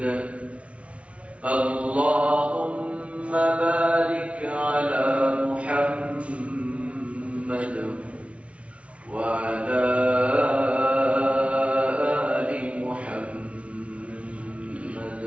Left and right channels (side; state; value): left; late; 0.062 ms